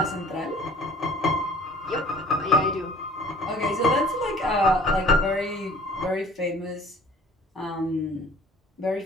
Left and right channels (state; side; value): normal; both; correlation 0.49